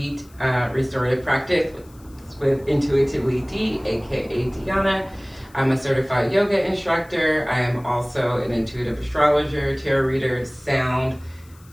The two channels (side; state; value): left; noise; hiss, 28 dB below the sound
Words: restorative practice with Intuitively D, aka Diana. I'm a certified yoga instructor. I am also an intuitive astrologer, tarot reader, sound